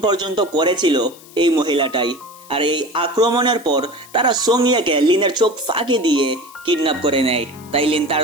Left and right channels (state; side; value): noise; left; hiss, 22 dB below the sound